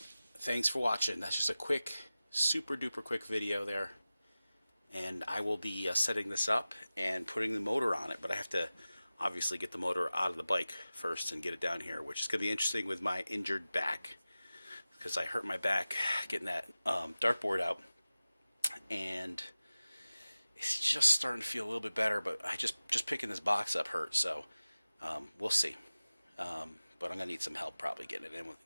Thanks for watching. That's just a quick, super duper quick video there. And I will be setting this up and putting the motor on it, but I have to obviously get the motor out of the bike first and get it down here, which is going to be interesting with my injured back, because I hurt my back getting that dartboard out, and it's just starting to feel a little bit better, but I just picking this box up hurt, so we'll see. But I'm going to need some help probably getting it in with.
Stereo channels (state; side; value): inverted; both; correlation -0.96